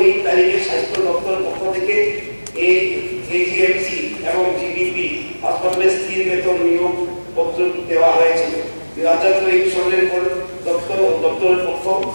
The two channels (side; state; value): both; inverted; correlation -1.00